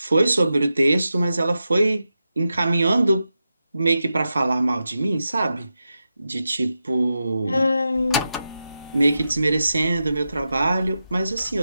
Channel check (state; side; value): inverted; both; correlation -0.90